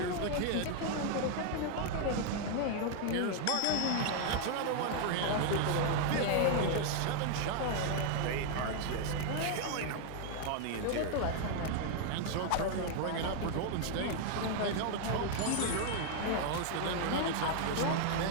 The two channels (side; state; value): both; different; correlation 0.00